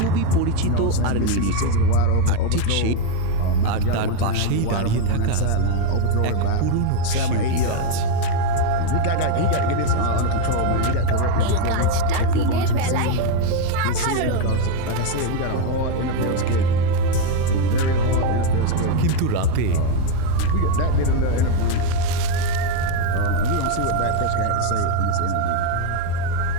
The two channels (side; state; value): both; different; correlation 0.02